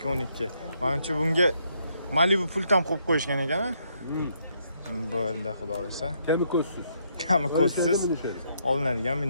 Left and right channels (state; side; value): inverted; both; correlation -0.73